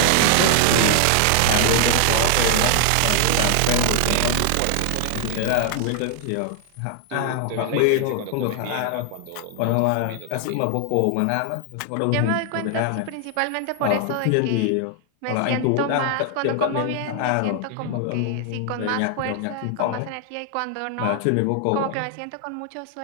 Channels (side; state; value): both; different; correlation 0.00